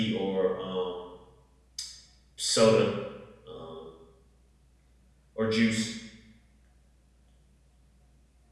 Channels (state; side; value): identical; both; correlation 1.00